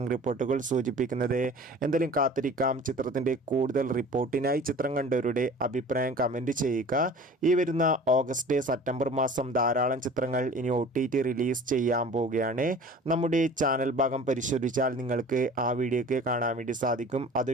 റിപ്പോർട്ടുകൾ സൂചിപ്പിക്കുന്നത്. എന്തായാലും കാത്തിരിക്കാം. ചിത്രത്തിൻ്റെ കൂടുതൽ റിപ്പോർട്ടിനായി ചിത്രം കണ്ടവരുടെ അഭിപ്രായം കമൻറ്റ് ചെയ്യുക. ഈ വരുന്ന ഓഗസ്റ്റ് സെപ്റ്റംബർ മാസം ധാരാളം ചിത്രങ്ങൾ ഇനി OTT റിലീസ് ചെയ്യാൻ പോവുകയാണ്. നമ്മുടെ ചാനൽ ഭാഗം പരിശോധിച്ചാൽ നിങ്ങൾക്ക് ആ വീഡിയോ ഒക്കെ കാണാൻ വേണ്ടി സാധിക്കും.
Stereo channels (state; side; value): normal; both; correlation 0.43